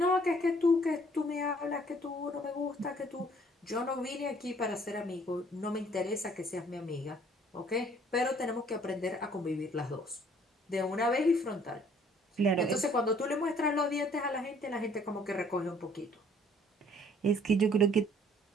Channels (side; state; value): both; normal; correlation 0.59